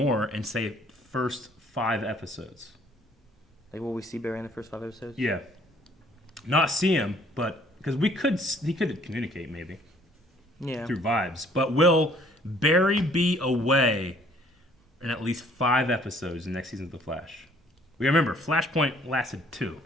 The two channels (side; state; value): both; normal; correlation 0.60